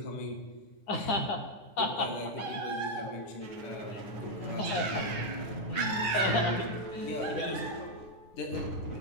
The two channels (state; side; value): late; right; 9.8 ms